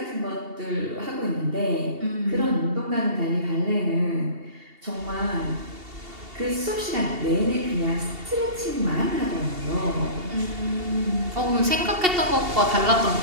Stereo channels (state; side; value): late; left; 2.7 ms